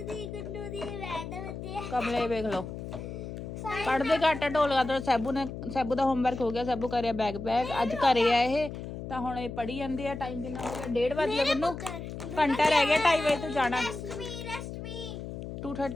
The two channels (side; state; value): left; noise; hum, 8 dB below the sound